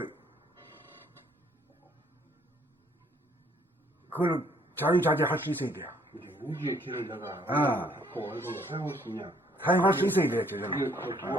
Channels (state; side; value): normal; both; correlation 0.64